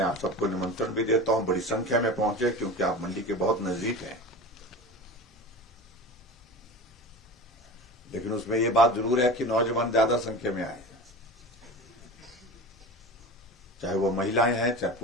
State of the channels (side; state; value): both; normal; correlation 0.32